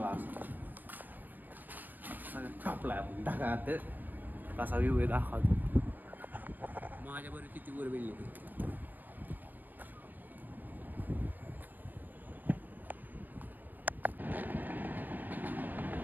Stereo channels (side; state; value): left; late; 0.089 ms